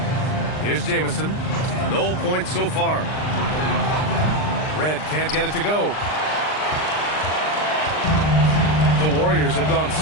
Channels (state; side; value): late; right; 39 ms